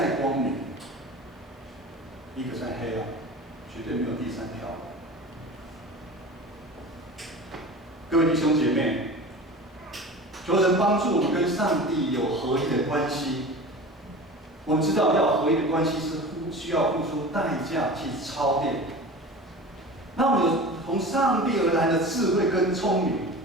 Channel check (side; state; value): both; normal; correlation 0.36